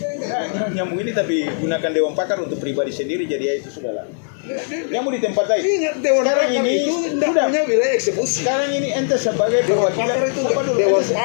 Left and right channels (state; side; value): silent; right; digital silence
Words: Nyambung ini tapi gunakan Dewan Pakar untuk pribadi sendiri jadi ya itu sudahlah. Yang mau di tempat lain. Ingat Dewan Sekarang Pakar ini itu tidak sudah. punya wilayah eksekusi. Sekarang ini ente sebagai Dewan perwakilan Pakar itu apa dulu? Dewan